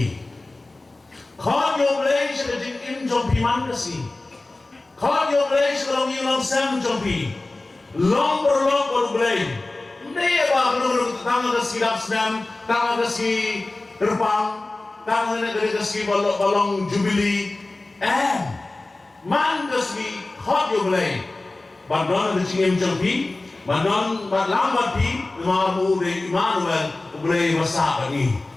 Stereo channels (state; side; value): quieter; right; 3.0 dB